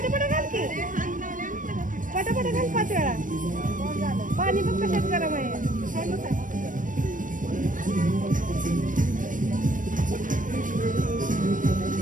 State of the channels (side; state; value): left; late; 0.38 ms